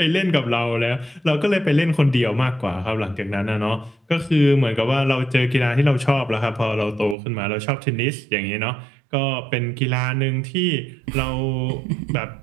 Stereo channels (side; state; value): left; drops out; at 7.2 s